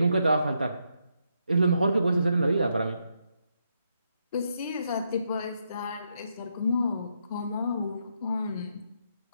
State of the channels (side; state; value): both; inverted; correlation -0.80